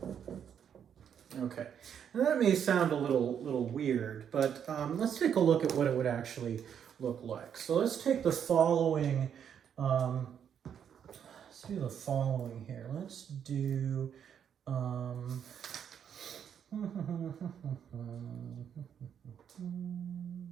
Okay, now that may sound a little weird, but let's take a look at what it would actually look like. So let's take the following, let's do the following here. Let's do,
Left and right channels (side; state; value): left; quieter; 8.4 dB